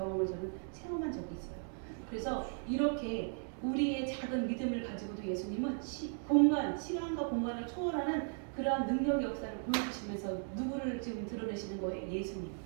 저는 체험한 적이 있어요. 그래서 이렇게 우리의 작은 믿음을 가지고도 예수님은 시간과 공간을 초월하는 그러한 능력 역사를 보여주시면서 누구를 지금 드러내시는 거예요? 예수님.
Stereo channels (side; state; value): left; silent; 53 dB below the other